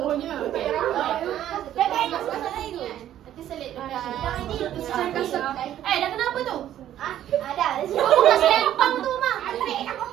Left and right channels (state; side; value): quieter; left; 11.7 dB